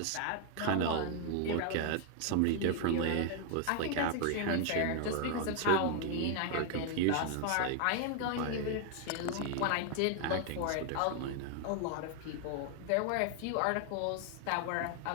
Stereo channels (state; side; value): different; both; correlation 0.00